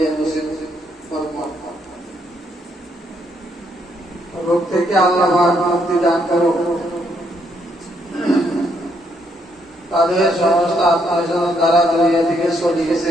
নসিব ফরমান। রোগ থেকে আল্লাহ পাক মুক্তি দান করো। তাদের সমস্ত আত্মীয়স্বজন দ্বারা দুনিয়া থেকে চলে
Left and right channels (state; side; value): normal; both; correlation 0.74